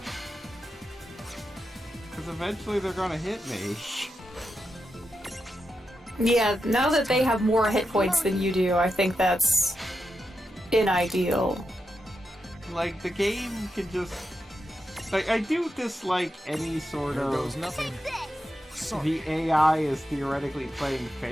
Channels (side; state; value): both; normal; correlation 0.87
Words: Because eventually they're gonna hit me. Yeah, now that they have more hit points than you do, I think that's unideal. Like, the game can just... Like, I do dislike any sort Here of... goes nothing. Sorry. The AI is theoretically playing